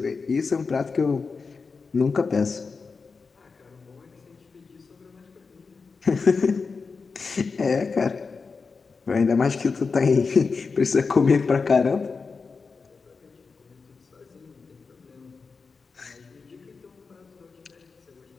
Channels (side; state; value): right; quieter; 4.7 dB